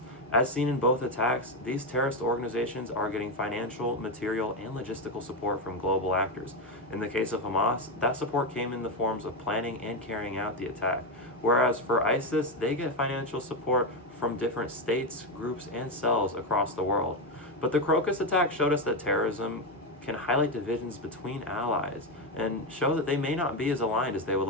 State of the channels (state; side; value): normal; both; correlation 0.09